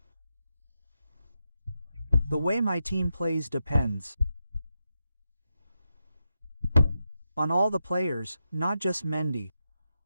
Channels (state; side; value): inverted; both; correlation -0.87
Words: The way my team plays depends on all the players, not just Mendy.